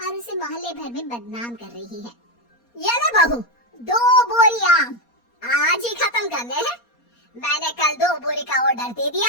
उसे मोहल्ले भर में बदनाम कर रही है। ये ले बहू, 2 बोरी आम आज ही खत्म करने हैं। मैंने कल 2 बोरी का ऑर्डर दे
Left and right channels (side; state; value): right; late; 4.2 ms